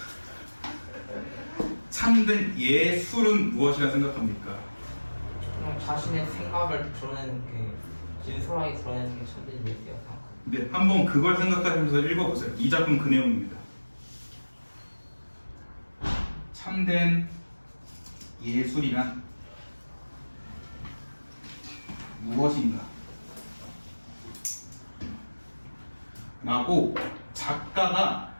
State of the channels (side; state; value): both; inverted; correlation -1.00